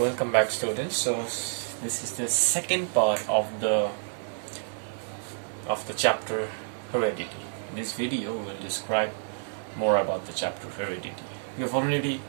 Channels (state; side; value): silent; left; digital silence